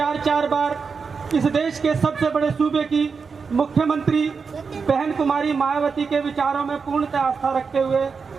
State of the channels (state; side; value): quieter; left; 5.3 dB